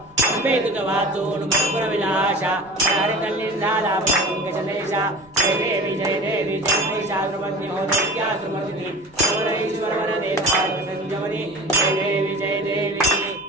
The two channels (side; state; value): right; noise; rumble, 28 dB below the sound